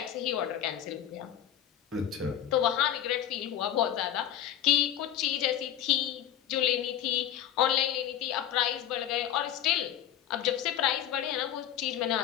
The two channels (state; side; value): quieter; right; 10.8 dB